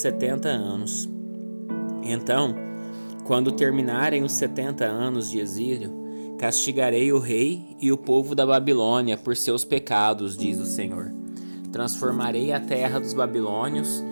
anos. Então, quando terminarem os 70 anos de exílio, castigarei o rei e o povo da Babilônia por seus pecados, diz o Senhor. Transformarei a terra dos babilônios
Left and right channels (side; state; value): both; inverted; correlation -1.00